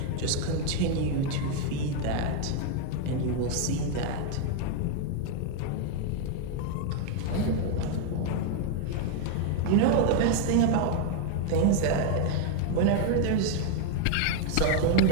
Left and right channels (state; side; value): different; both; correlation 0.01